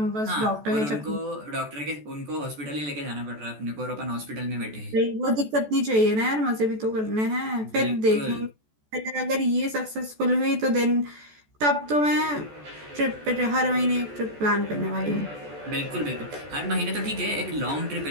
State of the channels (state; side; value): late; left; 14 ms